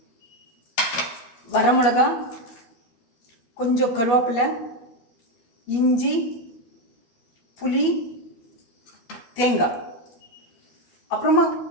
வரமிளகா, கொஞ்சம் கருவேப்பிலை, இஞ்சி, புளி, தேங்காய், அப்புறமா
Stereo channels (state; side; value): late; right; 13 ms